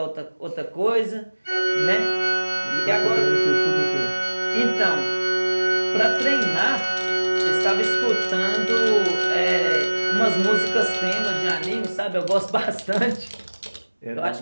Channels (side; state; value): both; inverted; correlation -1.00